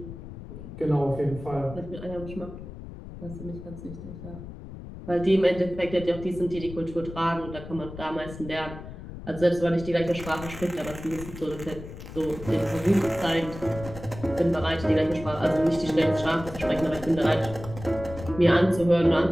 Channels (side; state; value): left; noise; rumble, 12 dB below the sound